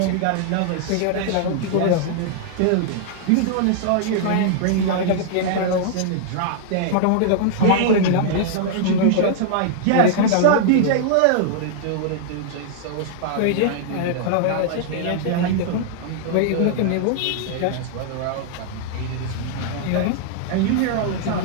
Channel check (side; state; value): both; different; correlation -0.01